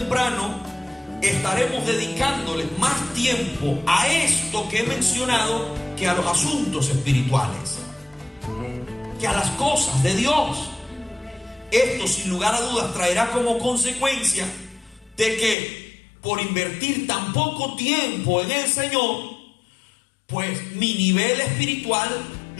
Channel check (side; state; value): right; drops out; at 15.6 s